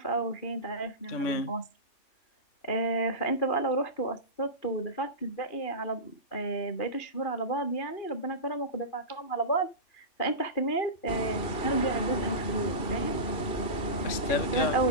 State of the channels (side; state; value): right; late; 2.4 ms